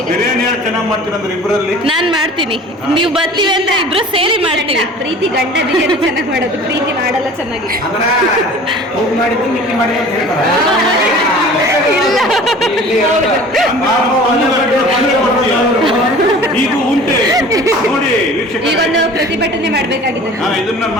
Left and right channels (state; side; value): normal; both; correlation 0.44